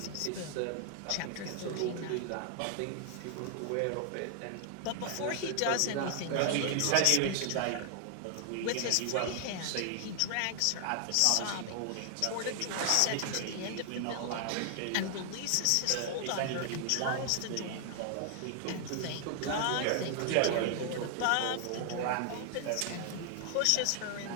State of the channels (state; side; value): different; both; correlation 0.00